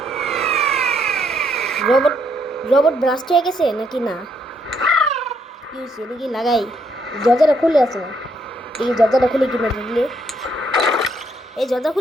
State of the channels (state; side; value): normal; both; correlation 0.73